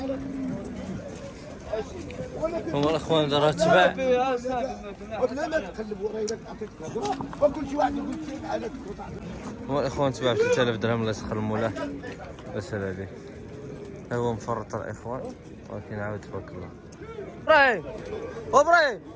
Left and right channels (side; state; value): both; identical; correlation 1.00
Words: هما الاخوان دار تباع. هما الاخوان تباع ب 3000 درهم. الله يسخر المولاه. بس هذا هو مفرط الاخوان. ولكن عاود تبارك الله. ابراهيم ابراهيم